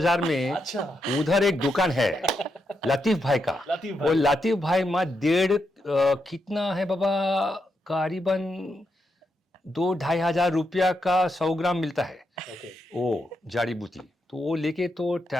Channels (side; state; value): both; normal; correlation 0.83